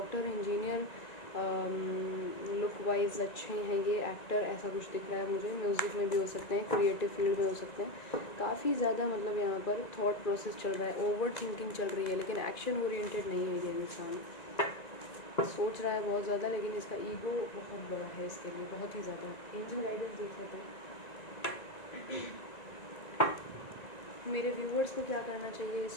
इंजीनियर, लुक वाइज अच्छे हैं ये एक्टर, ऐसा कुछ दिख रहा है मुझे। म्यूज़िक में भी हो सकते हैं, क्रिएटिव फील्ड में हो सकते हैं। काफ़ी ज़्यादा मतलब यहाँ पर थॉट प्रोसेस चल रहा है, ओवर थिंकिंग चल रही है, लेकिन एक्शन ओरिएंटेड नहीं है ये इंसान। सोच रहा है बहुत ज़्यादा, लेकिन इसका ईगो बहुत बड़ा है इसके लिए, बहुत ही ज़्यादा। एंजल गाइडेंस देख लेते हैं मेरे व्यूवर्स को क्या करना चाहिए इस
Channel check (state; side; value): late; right; 1.9 ms